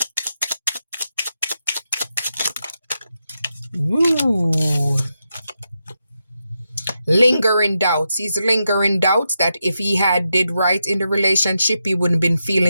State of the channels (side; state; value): both; inverted; correlation -0.86